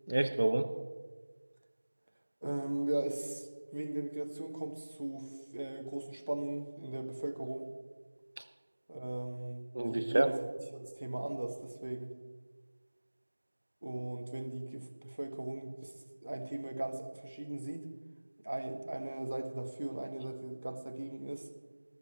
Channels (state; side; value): inverted; both; correlation -1.00